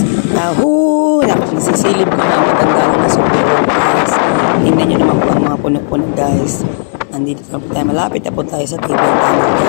Dapat nasisilip ko na ang katandaan na sa loob guys. Tingnan nyo naman po ang mga puno-puno guys. Malapit na po tayo sa TV ang tama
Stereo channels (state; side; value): silent; right; digital silence